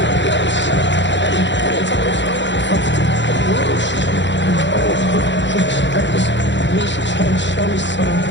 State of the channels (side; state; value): right; late; 0.53 ms